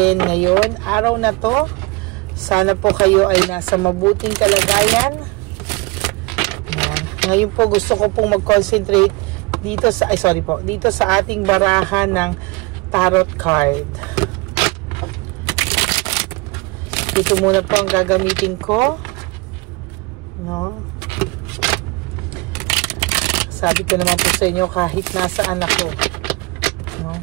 ngayon, araw na to? Sana po kayo ay nasa mabuting kalagayan. Yan. Ngayon po gusto ko pong mag-concentrate dito sa dito sa ating barahan ng tarot card. Ito muna po ang gagamitin ko. No? Sabi ko naman po sa inyo kahit nasaan ako. No?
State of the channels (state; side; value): quieter; left; 24.4 dB